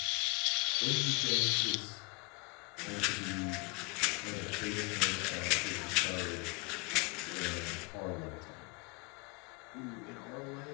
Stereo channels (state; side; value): quieter; right; 30.3 dB